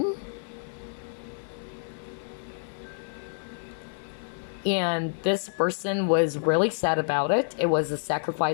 And this person was really sad about it. It was a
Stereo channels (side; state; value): right; silent; 59 dB below the other